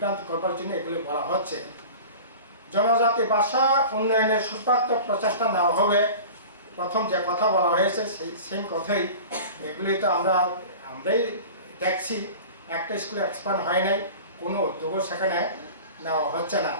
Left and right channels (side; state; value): both; inverted; correlation -0.38